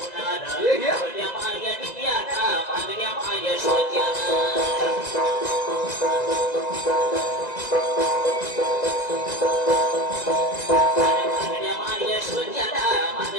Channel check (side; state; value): right; late; 1.9 ms